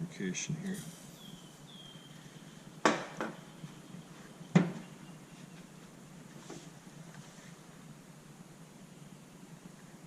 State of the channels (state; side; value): identical; both; correlation 1.00